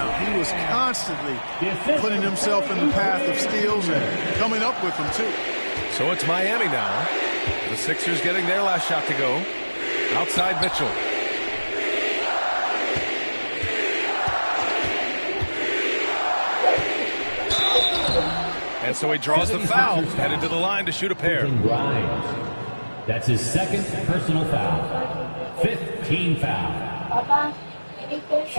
He was constantly putting himself in the path of steals and coming up with them, too. So it's Miami now. The Sixers getting their last shot to go. Outside Mitchell. And so he draws the foul, headed to the line to shoot a pair. That's his second personal foul. 15 foul.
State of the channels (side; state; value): both; inverted; correlation -1.00